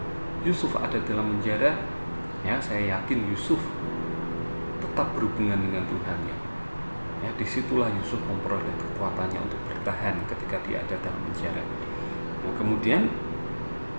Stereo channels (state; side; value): inverted; both; correlation -1.00